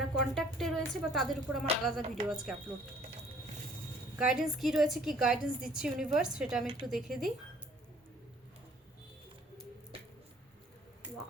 কন্ট্যাক্টে রয়েছে বা তাদের উপর আমার আলাদা ভিডিও আজকে আপলোড। গাইডেন্স কি রয়েছে, কি গাইডেন্স দিচ্ছে ইউনিভার্স, সেটা আমি একটু দেখে দিই।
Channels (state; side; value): normal; both; correlation 0.57